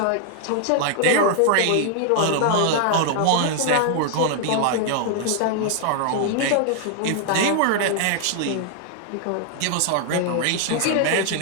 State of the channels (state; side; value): different; both; correlation 0.00